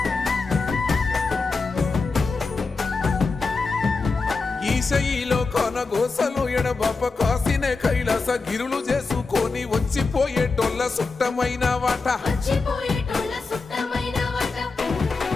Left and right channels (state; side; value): quieter; right; 4.1 dB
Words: ఈశయిలో కొనగోసలు ఎడబాప కాసినే కైలాస గిరులు చేసుకొని వచ్చిపోయేటోళ్ళ సుట్టమైన వాట వచ్చిపోయేటోళ్ళ సుట్టమైన వాట